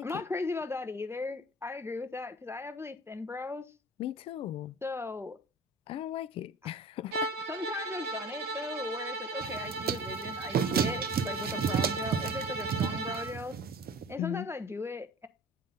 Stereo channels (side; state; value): both; normal; correlation 0.41